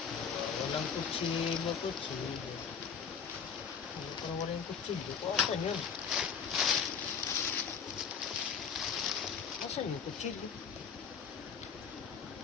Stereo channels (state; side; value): quieter; right; 6.7 dB